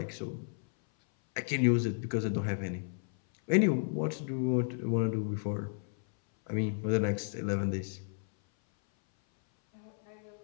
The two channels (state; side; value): silent; right; 56 dB below the other